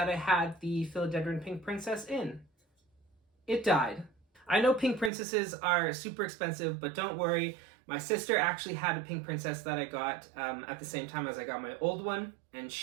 I had the Philodendron Pink Princess in. It died. I know pink princesses are super expensive, but don't worry. My sister actually had a pink princess that I got at the same time as I got my old one, and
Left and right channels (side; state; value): left; drops out; at 5.1 s